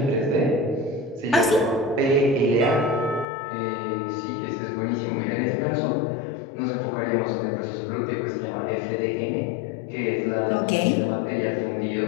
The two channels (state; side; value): drops out; right; at 3.2 s